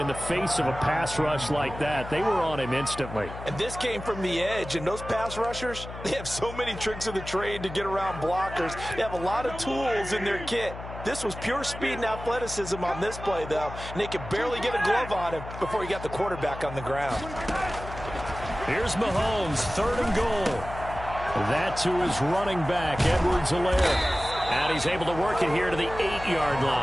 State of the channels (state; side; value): noise; left; hum, 11 dB below the sound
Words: the face of a pass rush like that. They were on him instantly. And this came from the edge, and those pass rushers, they have so many tricks of the trade to get around blockers. They have a lot of tools in their kit. This was pure speed and athleticism on this play, though, and they could barely get a glove on him before he got the quarterback on the ground. Here's Mahomes, 3rd and goal. That to his running back, Edwards-Helaire. And he's able to work it here to the 8-yard